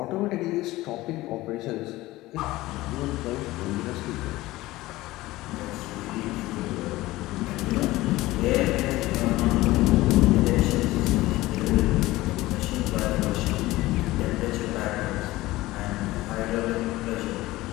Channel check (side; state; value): right; quieter; 18.2 dB